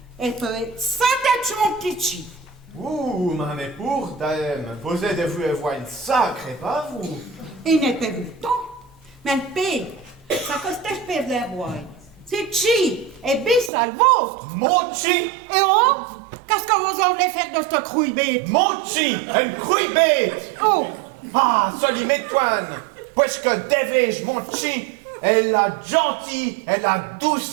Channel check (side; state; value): left; drops out; at 13.7 s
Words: elle peut être sans tête mon petit chi. Ouh, mais pour dame, vous êtes vous avoir une sacrée, pas vous? Il n'est pas vu le temps. Mais le paye, ça coste espèce d'un bois. C'est chi, et bis à le vôtre. Mochi! Et oh, qu'est-ce que vous en voulez faire de ce crouille bête? Mochi! Une couille bête! Oh, Ah, soli m'étoine! Puisque devais-je, Mochi, Elle a gentil, elle a